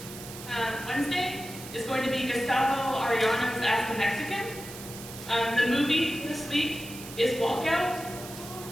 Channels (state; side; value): noise; right; hiss, 13 dB below the sound